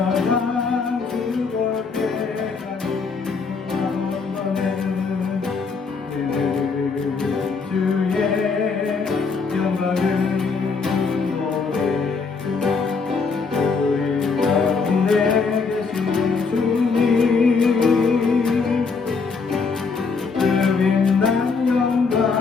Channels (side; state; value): right; quieter; 4.8 dB